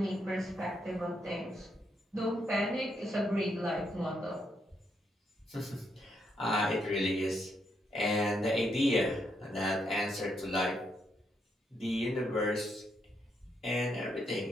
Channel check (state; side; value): normal; both; correlation 0.78